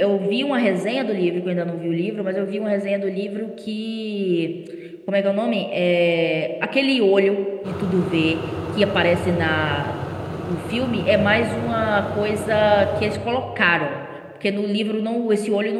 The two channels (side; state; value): both; identical; correlation 1.00